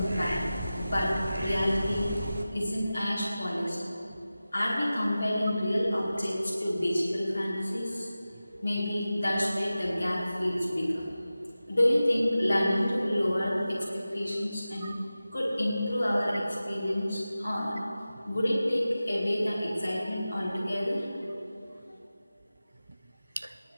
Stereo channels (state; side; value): inverted; both; correlation -0.95